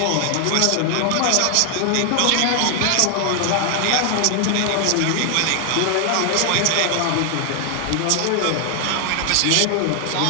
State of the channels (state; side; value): different; both; correlation 0.00